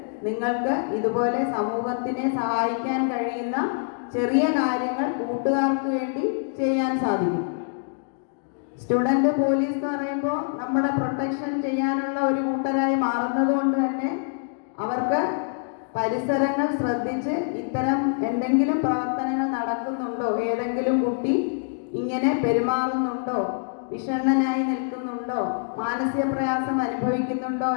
നിങ്ങൾക്ക് ഇതുപോലെ സമൂഹത്തിനെ സഹായിക്കാൻ കഴിയുന്ന ചെറിയ കാര്യങ്ങൾ കൂട്ടുകാർക്ക് വേണ്ടി ചെയ്യാൻ സാധിക്കും. സ്റ്റുഡൻറ് പോലീസ് എന്ന് പറയുമ്പോൾ നമ്മുടെ പ്രൊട്ടക്ഷൻ ചെയ്യാനുള്ള ഒരു കൂട്ടരായി മാറുന്നത് കൊണ്ട് തന്നെ അവർക്ക് പരിസരങ്ങൾ ശ്രദ്ധിച്ച് ഇത്തരം എന്തെങ്കിലും പ്രവർത്തനങ്ങൾ നടക്കുന്നുണ്ടോ, ഏതെങ്കിലും കുട്ടി ഇങ്ങനെ പെരുമാറുന്നുണ്ടോ, വിഷണ്ണനായി നിൽക്കുന്നുണ്ടോ, മാനസിക പ്രയാസം അനുഭവിക്കുന്നുണ്ടോ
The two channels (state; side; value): silent; right; digital silence